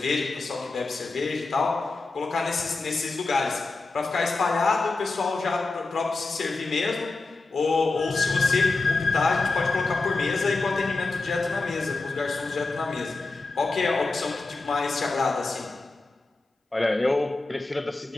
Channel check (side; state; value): right; quieter; 3.6 dB